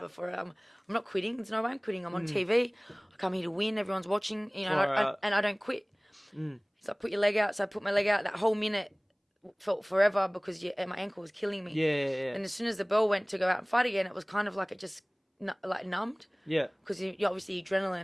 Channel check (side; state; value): both; identical; correlation 1.00